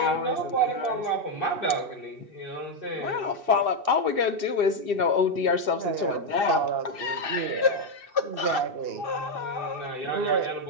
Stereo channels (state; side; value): late; left; 2.6 ms